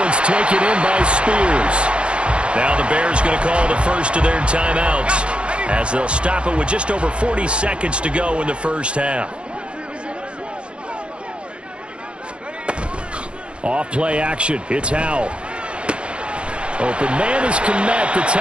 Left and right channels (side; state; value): left; late; 0.058 ms